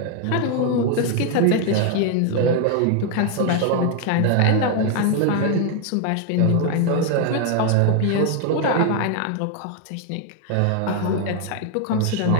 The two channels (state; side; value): different; both; correlation 0.01